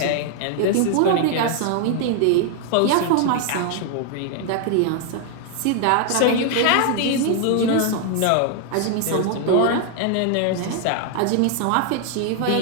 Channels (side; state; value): both; different; correlation 0.00